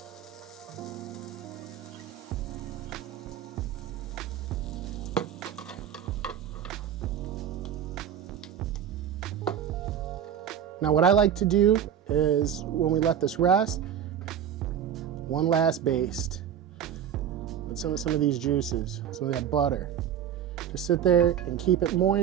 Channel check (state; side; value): quieter; left; 9.3 dB